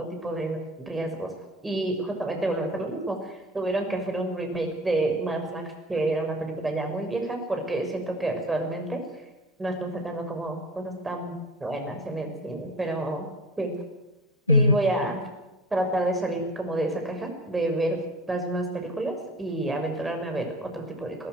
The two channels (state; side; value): normal; both; correlation 0.36